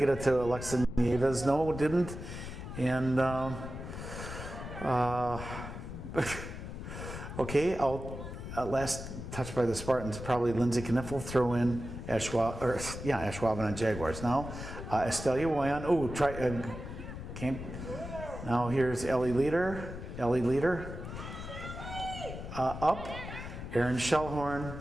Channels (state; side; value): noise; left; rumble, 9 dB below the sound